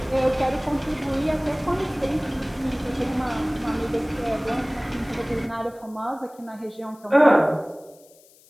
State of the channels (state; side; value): noise; left; hiss, 27 dB below the sound